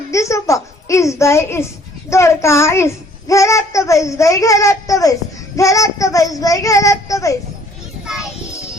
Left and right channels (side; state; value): both; normal; correlation 0.58